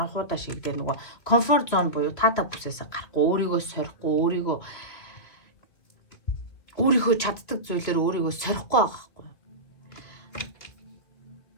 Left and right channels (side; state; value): right; late; 3.0 ms